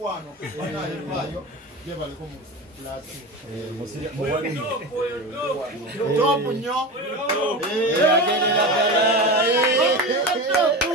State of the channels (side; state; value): both; normal; correlation 0.25